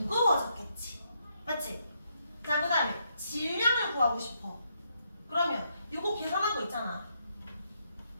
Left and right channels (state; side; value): inverted; both; correlation -0.77